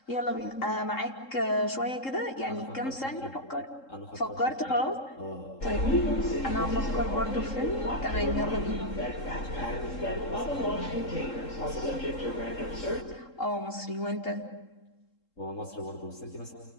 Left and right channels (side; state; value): right; late; 3.7 ms